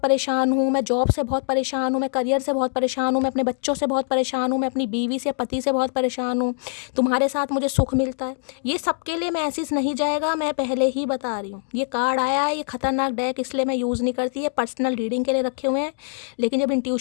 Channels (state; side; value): silent; right; 63 dB below the other